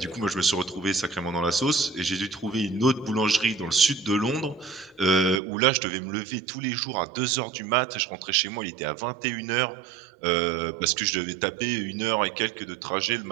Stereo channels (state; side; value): drops out; left; at 5.4 s